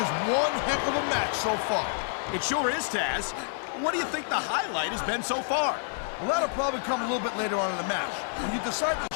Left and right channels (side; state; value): right; silent; digital silence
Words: one heck of a match so far. It sure is, Taz. What do you think the highlight has been so far? Well, that'll probably come a little bit later on in the match. When you decide to